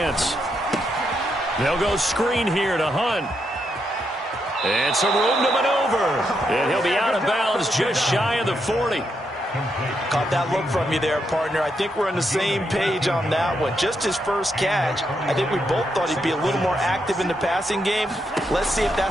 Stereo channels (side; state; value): both; normal; correlation 0.80